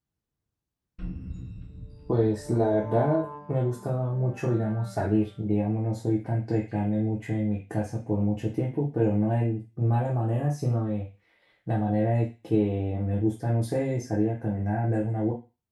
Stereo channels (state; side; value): identical; both; correlation 1.00